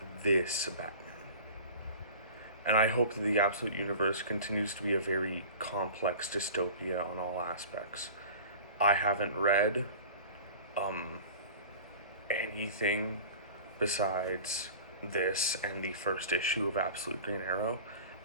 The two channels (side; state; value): both; inverted; correlation -0.40